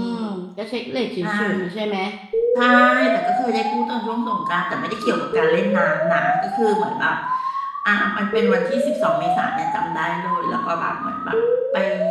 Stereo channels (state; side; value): identical; both; correlation 1.00